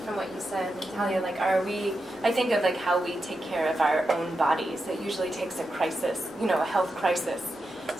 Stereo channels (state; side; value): normal; both; correlation 0.88